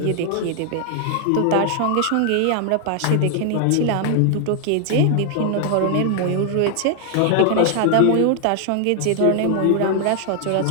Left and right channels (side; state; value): both; different; correlation 0.00